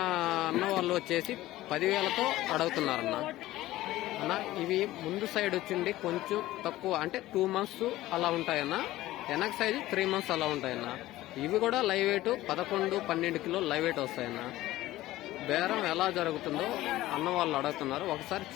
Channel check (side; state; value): right; quieter; 16.2 dB